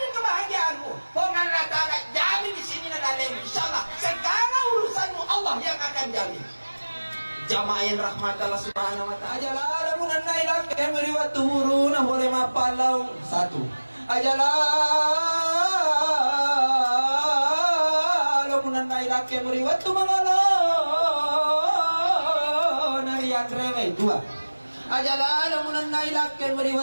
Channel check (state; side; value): inverted; both; correlation -1.00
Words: kebahagiaanmu. Hongan latala jamin di sini nadalemu. Insyaallah segala urusanmu Allah yang akan jamin. Jamaah yang rahmat Allah Subhanahu wa taala. Ajalah lamun nailah kemeri waktu huruna boleh mapalau. 1. Ajalah lamun nailah kemeri waktu mangalo. Narian rewe 2. Ajalala munan nailakken